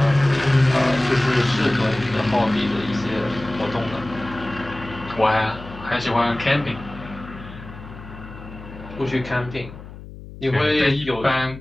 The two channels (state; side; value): noise; left; hum, 15 dB below the sound